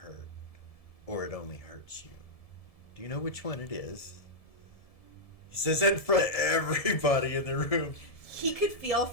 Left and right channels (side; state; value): right; late; 1.7 ms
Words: or it only hurts you. Do you know which one it is? He says that in front of everybody in the room. He could feel